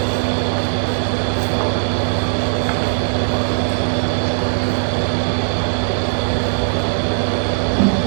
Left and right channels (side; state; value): left; silent; digital silence